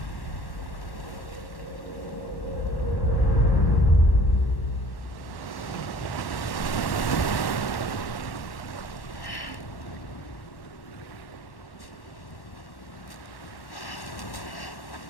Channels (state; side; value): late; right; 1.1 ms